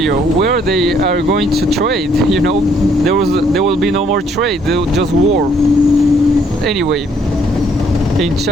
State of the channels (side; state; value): both; normal; correlation 0.66